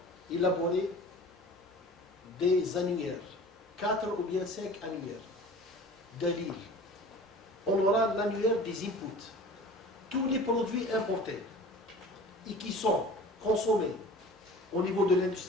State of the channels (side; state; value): both; normal; correlation 0.41